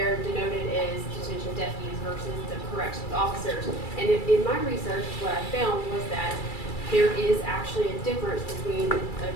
denoted as detention deputies versus the corrections officers. And in my research, what I found was that there is actually a difference between a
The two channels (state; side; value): late; right; 2.3 ms